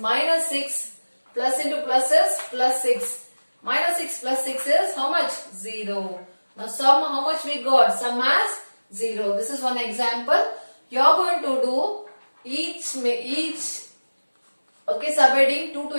6 plus into plus is plus 6. Minus 6 plus 6 is how much? 0. Now sum, how much we got? Sum as 0. This is one example. You are going to do each okay, subheading 2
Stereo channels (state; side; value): inverted; both; correlation -1.00